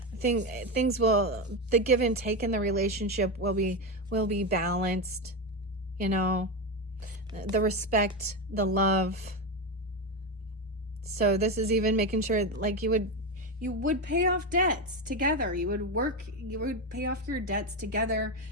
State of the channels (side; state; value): both; normal; correlation 0.13